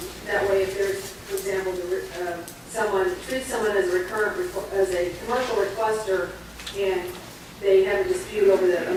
that way, if there's, for example, someone treats someone as a commercial requester, and they have a dispute over the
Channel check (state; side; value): identical; both; correlation 1.00